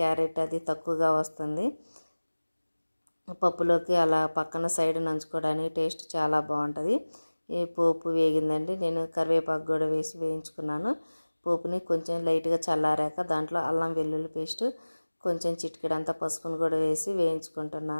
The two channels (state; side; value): inverted; both; correlation -1.00